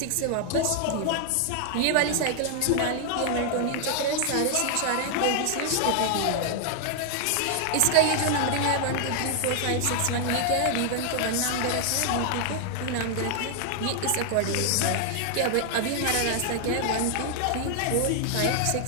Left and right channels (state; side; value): different; both; correlation 0.00